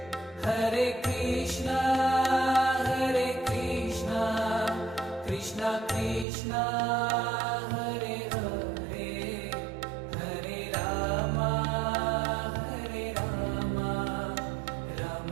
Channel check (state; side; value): drops out; left; at 6.2 s